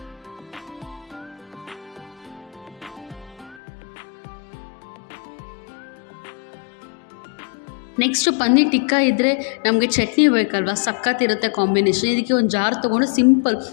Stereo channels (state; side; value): drops out; right; at 3.6 s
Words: ನೆಕ್ಸ್ಟು ಪನ್ನೀರ್ ಟಿಕ್ಕಾ ಇದ್ದರೆ ನಮಗೆ ಚಟ್ನಿ ಬೇಕಲ್ವ, ಸಕ್ಕತ್ತಿರುತ್ತೆ ಕಾಂಬಿನೇಷನ್. ಇದಕ್ಕೆ ಒಂದು ಜಾರ್ ತೊಗೊಂಡು ಸಿಂಪಲ್